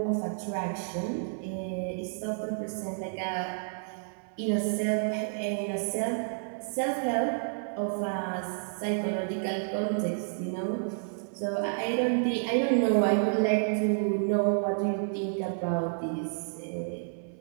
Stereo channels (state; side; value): silent; left; 58 dB below the other